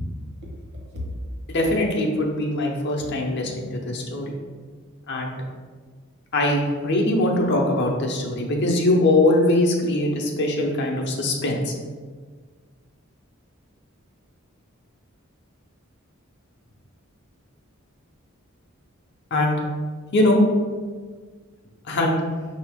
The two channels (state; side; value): normal; both; correlation 0.37